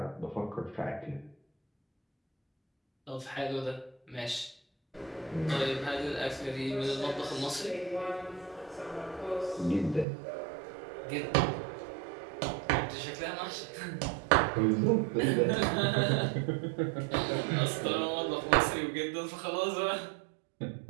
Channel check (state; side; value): drops out; left; at 10.1 s